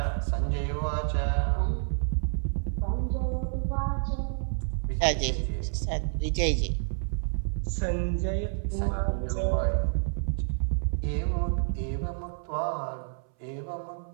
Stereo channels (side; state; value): left; silent; 59 dB below the other